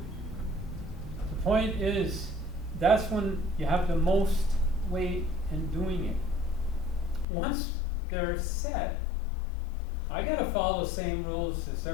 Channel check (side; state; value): right; drops out; at 7.2 s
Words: The point is, that's when you have the most weight in doing it. Once they're set, I gotta follow the same rules as